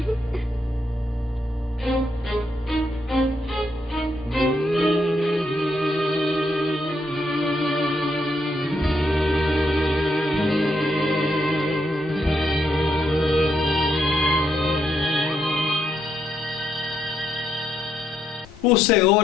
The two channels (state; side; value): normal; both; correlation 0.77